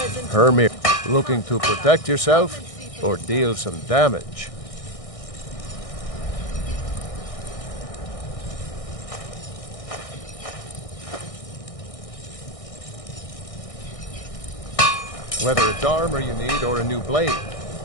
Hermit, looking to protect yourself or deal some damage? Whether it's armor you need or a new blade,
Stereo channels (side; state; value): right; late; 1.6 ms